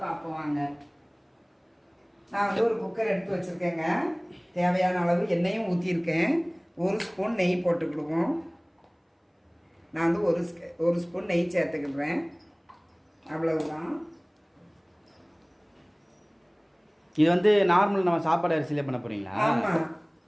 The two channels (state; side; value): identical; both; correlation 1.00